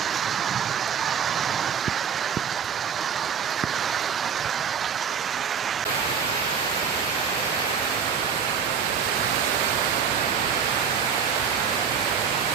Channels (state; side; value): quieter; left; 7.1 dB